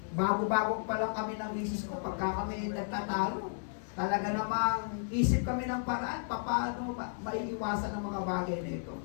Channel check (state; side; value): silent; right; digital silence